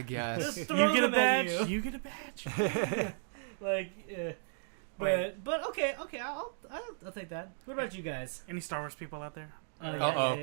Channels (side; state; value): left; silent; digital silence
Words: guess. Just throw You get a them at badge. you. You get a badge. Like, but okay, I'll take that. What about you guys? Any Star Wars people out there? Uh-oh.